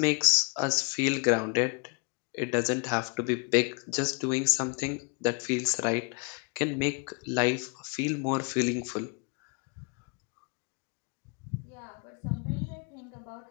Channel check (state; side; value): quieter; right; 33.1 dB